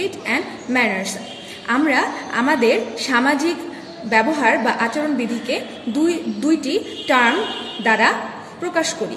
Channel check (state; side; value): identical; both; correlation 1.00